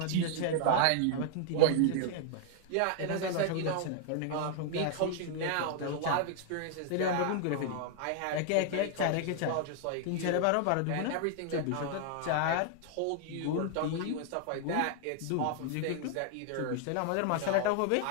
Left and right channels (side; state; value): both; different; correlation 0.00